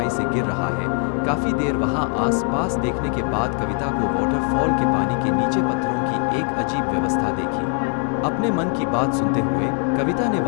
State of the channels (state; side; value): quieter; right; 38.0 dB